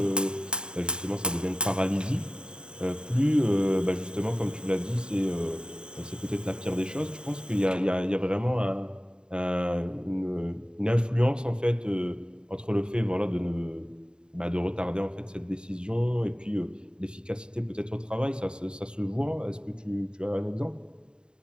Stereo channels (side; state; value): left; late; 0.048 ms